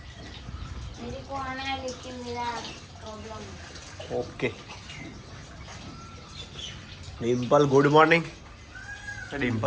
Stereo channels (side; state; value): both; identical; correlation 1.00